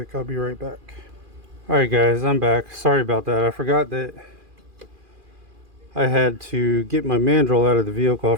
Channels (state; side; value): late; left; 2.4 ms